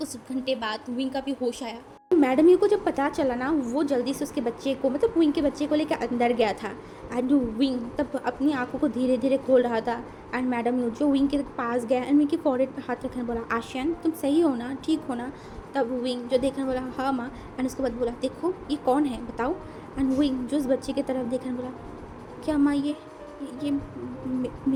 घंटे बाद विंग का भी होश आया। मैडम यू को जब पता चला ना, वो जल्दी से उसके बच्चे को मतलब विंग के बच्चे को लेकर अंदर गया था, एंड विंग तब अपनी आंखों को धीरे धीरे खोल रहा था। एंड मैडम यू जो विंग के पास गया, एंड विंग के फॉरहेड पे हाथ रखने बोला, आशियन तुम सही हो ना, ठीक हो ना? तब विंग जो देखने बोला, हाँ माँ। एंड उसके बाद बोला, देखो ये कौन है बताओ? एंड विंग जो उस बच्चे की तरफ देखने बोला, क्या माँ ये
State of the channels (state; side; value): identical; both; correlation 1.00